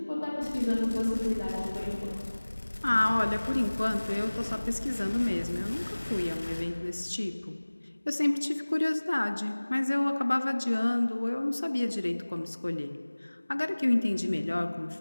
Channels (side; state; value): both; inverted; correlation -1.00